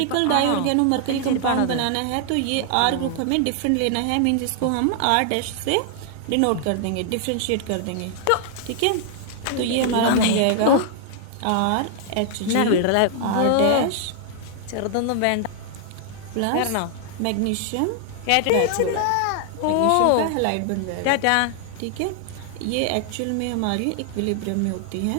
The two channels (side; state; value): both; different; correlation 0.00